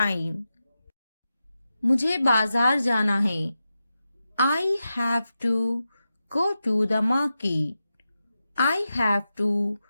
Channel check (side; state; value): both; inverted; correlation -0.90